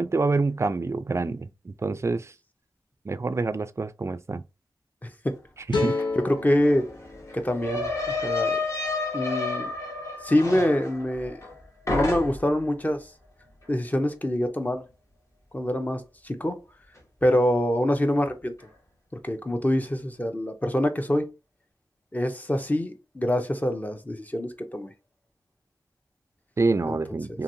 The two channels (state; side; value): normal; both; correlation 0.89